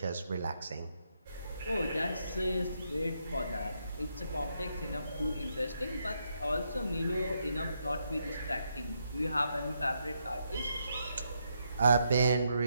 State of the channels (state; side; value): inverted; both; correlation -0.80